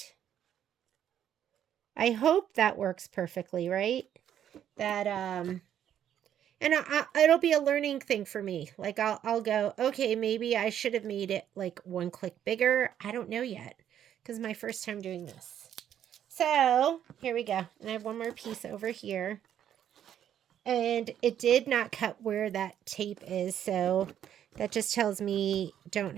I hope that works perfectly, right? That, and it'll be a learning thing for me. Like, I'll go, okay, maybe I should have made it like one click bigger. I don't know yet, because my first time doing this. So, here we go. And I have one more piece over here. And it did not cut where that tape is, so that just tells me don't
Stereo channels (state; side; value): quieter; left; 10.1 dB